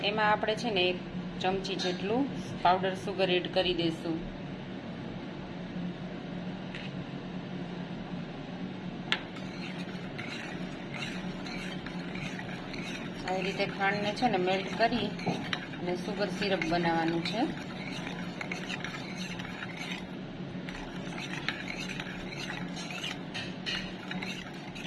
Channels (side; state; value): both; identical; correlation 1.00